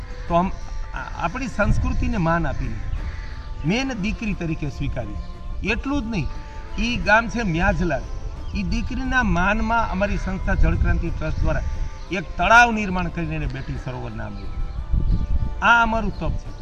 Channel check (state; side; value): identical; both; correlation 1.00